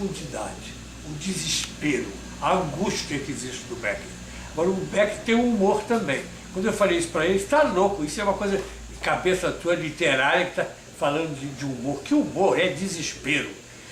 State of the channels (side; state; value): both; identical; correlation 1.00